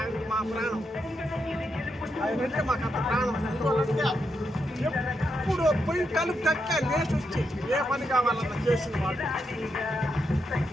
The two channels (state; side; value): normal; both; correlation 0.82